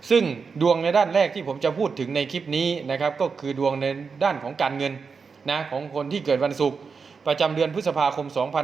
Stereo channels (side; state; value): left; quieter; 5.3 dB